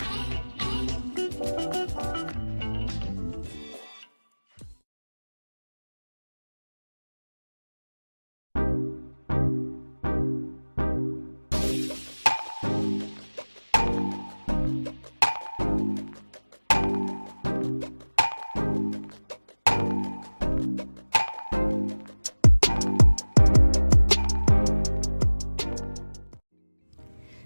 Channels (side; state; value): both; inverted; correlation -1.00